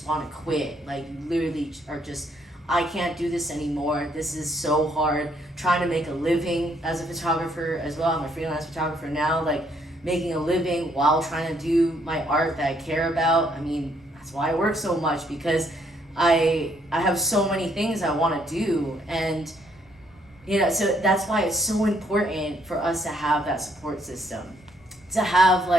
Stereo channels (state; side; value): normal; both; correlation 0.70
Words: want to quit. Like you literally are just, I can't do this anymore. This is so hard. Trying to make a living as a photographer as well. I'm a freelance photographer now, like making a living while trying to do my art that I care about. I mean, that's why I work so much because I have so many things I want to do. And so that's why it's so important for us to have that support system. To have